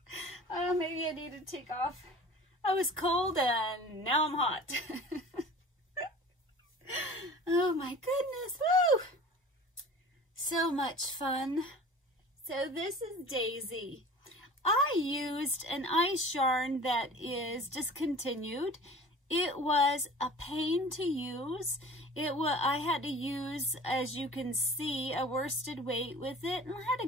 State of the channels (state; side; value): normal; both; correlation 0.42